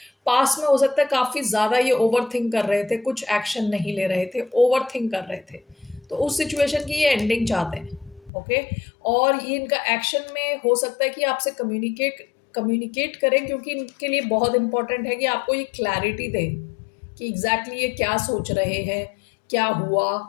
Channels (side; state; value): right; drops out; at 8.3 s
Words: पास में हो सकता है काफी ज्यादा ये ओवर थिंक कर रहे थे, कुछ एक्शन नहीं ले रहे थे, ओवर थिंक कर रहे थे, तो उस सिचुएशन की ये एंडिंग चाहते हैं। ओके, और ये इनका एक्शन में हो सकता है कि आपसे कम्युनिकेट करें, क्योंकि इनके लिए बहुत इंपॉर्टेंट है कि आपको ये क्लैरिटी दे कि एग्जैक्टली ये क्या सोच रहे हैं, क्या हुआ।